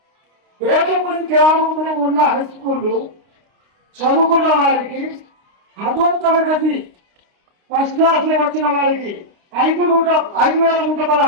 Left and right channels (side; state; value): left; late; 29 ms